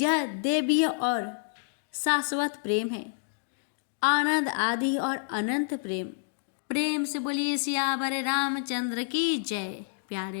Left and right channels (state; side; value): silent; right; digital silence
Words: देवीय और शाश्वत प्रेम है, आनंद आदि और अनंत प्रेम। प्रेम से बोलिए सियावर रामचंद्र की जय।